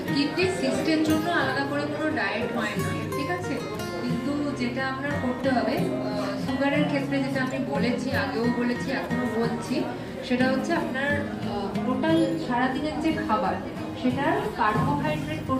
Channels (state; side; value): identical; both; correlation 1.00